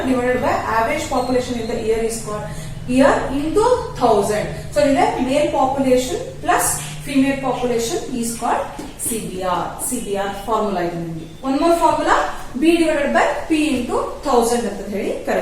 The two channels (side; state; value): both; identical; correlation 1.00